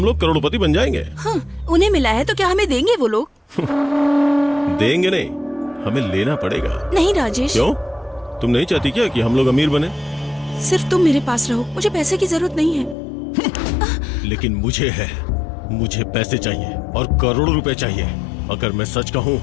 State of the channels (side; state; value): right; drops out; at 13.0 s